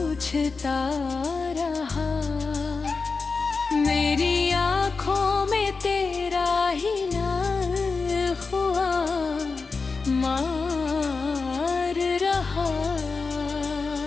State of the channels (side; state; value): right; quieter; 4.4 dB